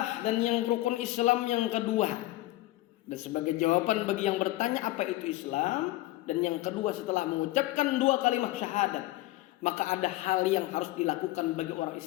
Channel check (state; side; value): quieter; right; 17.6 dB